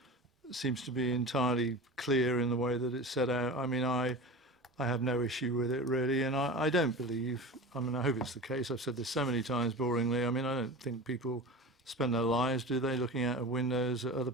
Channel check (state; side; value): normal; both; correlation 0.31